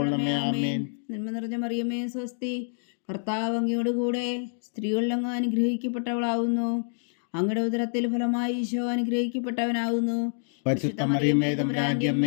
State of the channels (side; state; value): right; silent; digital silence